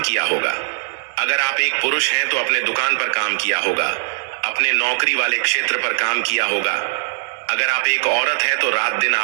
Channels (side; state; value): left; silent; digital silence